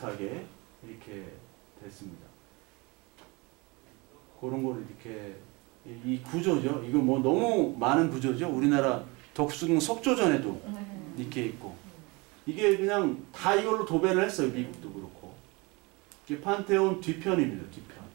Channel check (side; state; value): left; quieter; 26.4 dB